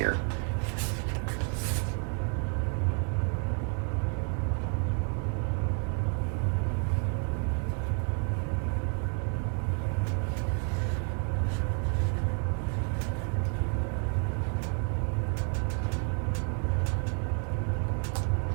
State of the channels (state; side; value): quieter; left; 39.4 dB